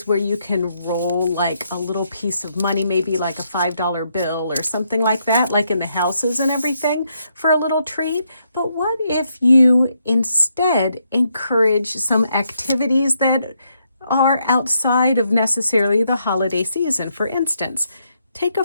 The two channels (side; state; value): both; inverted; correlation -0.77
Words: where you can roll like a little piece of money, maybe like a $5 bill or something like that, like in the houses and everything, for a little treat. But what if you instead encourage some activities that are outside of necessarily the holiday season? For instance, take a